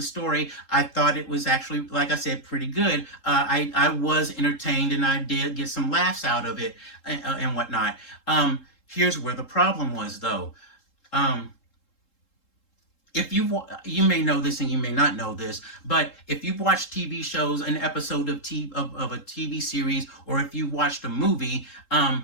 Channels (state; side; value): late; right; 3.7 ms